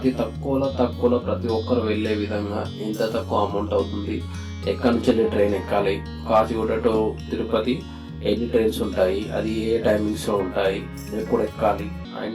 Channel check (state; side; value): identical; both; correlation 1.00